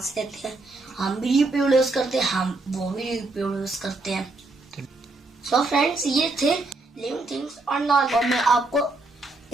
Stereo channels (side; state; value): left; quieter; 3.2 dB